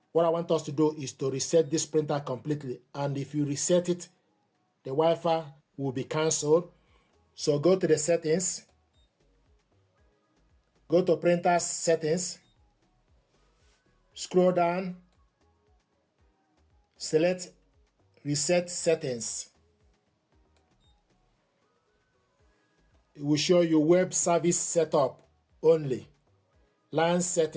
What I want us to do is to reset this printer completely. And if you reset it, the Wi-Fi will be cancelled. So go to the settings. Go to printer settings. Scroll down. Select reset settings. It will show you web service setup only. LAN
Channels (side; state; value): both; identical; correlation 1.00